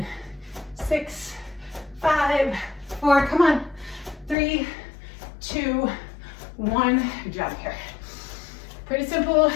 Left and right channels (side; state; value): right; drops out; at 4.4 s